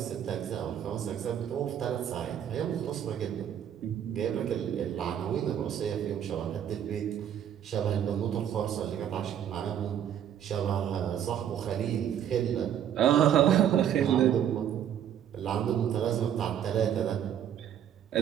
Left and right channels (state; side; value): quieter; left; 9.7 dB